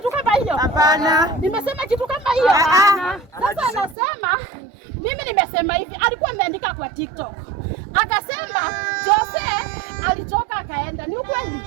kama hiyo? Hapana. Nimesema kitu kama hiyo? Hapana. Sasa anasema mimi nimesema hivi, alikuwa ameandika kwa TikTok. Akasema Jose alitoka akaenda. Ni ukweli?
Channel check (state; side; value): drops out; left; at 4.0 s